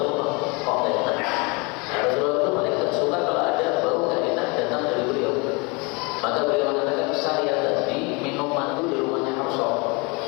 Kok nggak enak? Nah, Rasulullah itu paling tidak suka kalau ada bau nggak enak datang dari beliau. Maka beliau mengatakan, saya tadi minum madu di rumahnya Hafsah.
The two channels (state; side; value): quieter; right; 29.2 dB